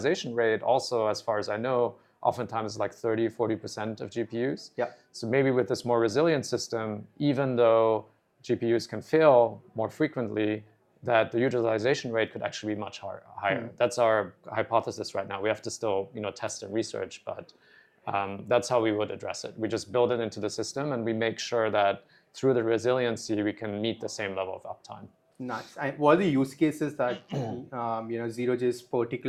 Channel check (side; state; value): both; identical; correlation 1.00